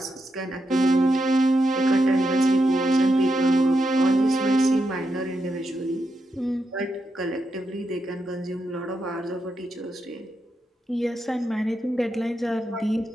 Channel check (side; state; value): both; normal; correlation 0.85